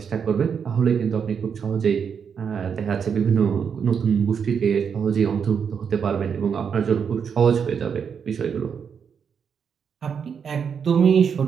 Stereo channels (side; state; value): left; quieter; 6.9 dB